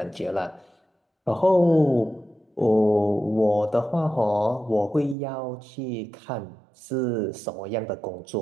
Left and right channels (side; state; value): left; drops out; at 5.2 s